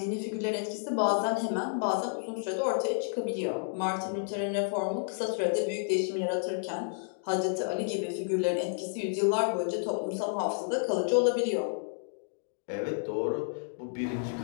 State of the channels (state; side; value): silent; right; digital silence